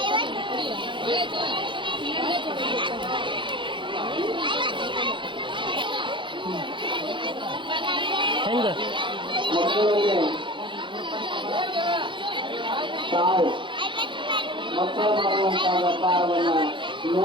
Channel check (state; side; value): late; left; 0.23 ms